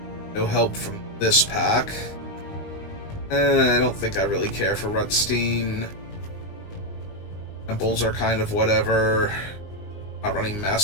No help from this pack. I don't think I really care for Rutstein. Temples are kind of whatever. Not running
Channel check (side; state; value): right; late; 19 ms